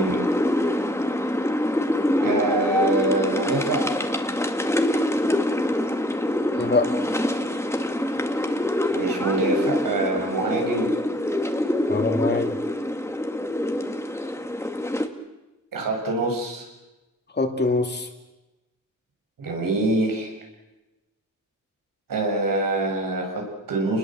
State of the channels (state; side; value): normal; both; correlation 0.50